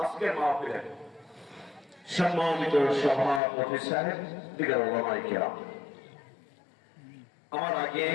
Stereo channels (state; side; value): drops out; right; at 3.4 s